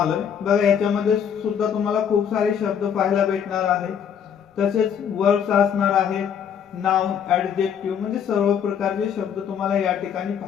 बघा, याच्यामध्ये सुद्धा तुम्हाला खूप सारे शब्द पाहायला भेटणार आहेत, तसेच वर्ड्स असणार आहेत, नाउन, ॲडजेक्टिव्ह म्हणजे सर्व प्रकारचे शब्द तुम्हाला या ठिकाणी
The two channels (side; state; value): right; quieter; 8.1 dB